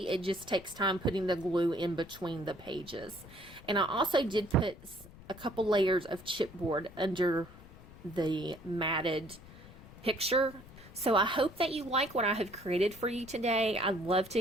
It just takes time putting the glue in between the pages. And I also did put a couple layers of chipboard under the matted picture. So I hope that you like what I have created for you today. I'd love to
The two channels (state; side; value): noise; left; rumble, 19 dB below the sound